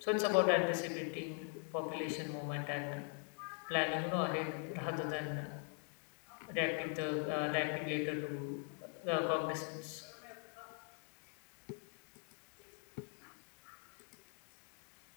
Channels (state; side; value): quieter; right; 39.2 dB